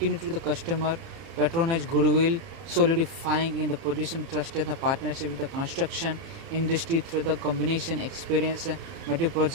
to the customer, patronage goodwill, solidifying in the position trusted the partnership with the construction industry through the combination experience,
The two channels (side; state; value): left; late; 30 ms